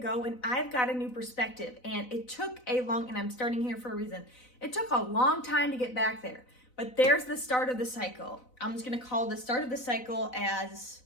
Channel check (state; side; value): late; right; 4.0 ms